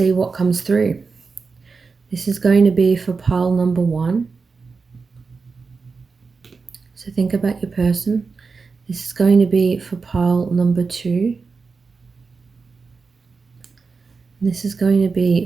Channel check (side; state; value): left; quieter; 4.7 dB